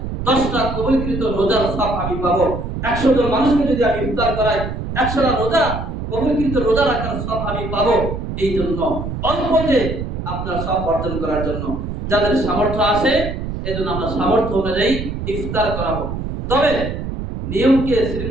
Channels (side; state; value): right; noise; rumble, 5 dB below the sound